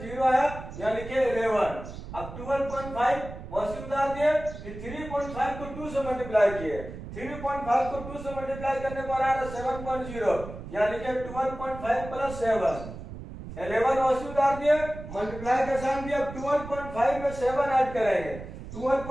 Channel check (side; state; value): right; noise; rumble, 11 dB below the sound